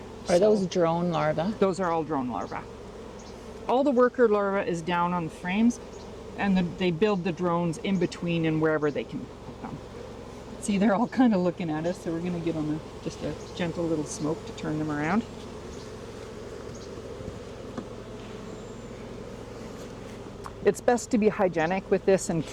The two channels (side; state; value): both; identical; correlation 1.00